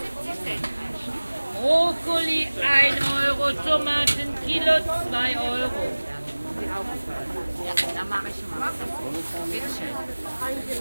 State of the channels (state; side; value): inverted; both; correlation -1.00